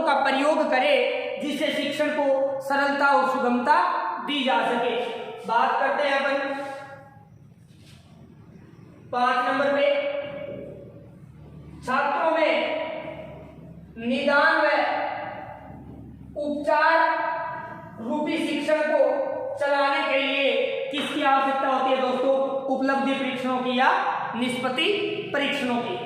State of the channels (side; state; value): both; identical; correlation 1.00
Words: का प्रयोग करे जिससे शिक्षण को सरलता और सुगमता दी जा सके। बात करते हैं अपन 5 नंबर पे छात्रों में निदान व उपचार रूपी शिक्षण को चलाने के लिए किसकी आवश्यकता होती है दोस्तों? उपलब्धि परीक्षणों की या निष्पत्ति परीक्षणों की।